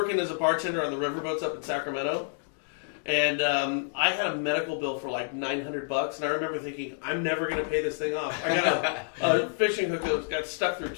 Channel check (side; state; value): right; silent; digital silence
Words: as a bartender on the riverboats up in Sacramento. And I had a medical bill for like $900, and I remember thinking, I'm never going to pay this thing off. I got a fishing hook that got stuck through